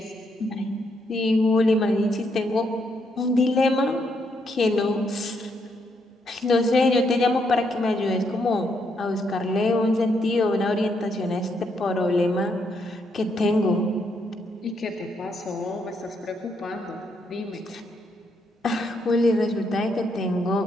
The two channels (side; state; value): both; normal; correlation 0.76